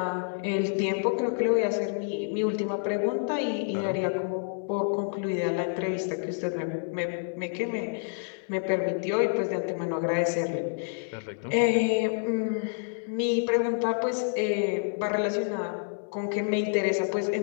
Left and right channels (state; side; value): silent; right; digital silence